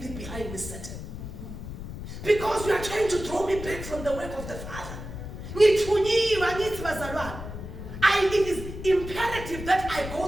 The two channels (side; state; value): left; noise; rumble, 9 dB below the sound